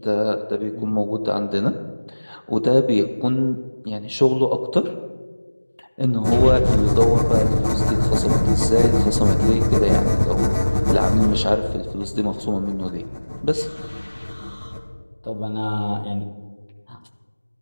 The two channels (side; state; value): both; inverted; correlation -1.00